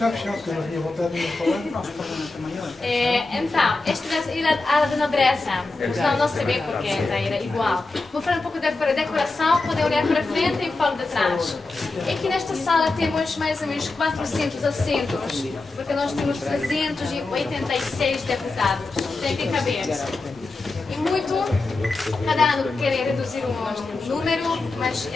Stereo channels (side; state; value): right; quieter; 3.4 dB